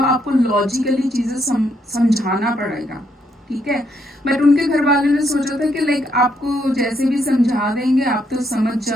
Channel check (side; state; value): both; normal; correlation 0.75